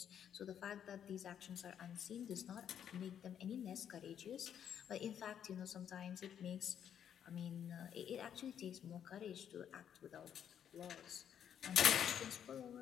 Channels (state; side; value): quieter; right; 9.1 dB